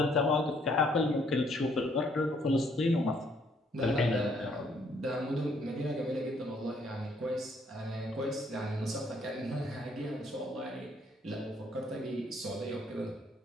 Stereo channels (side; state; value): both; normal; correlation 0.67